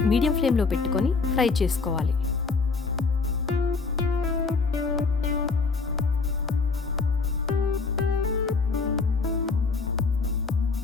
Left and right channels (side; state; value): right; quieter; 4.4 dB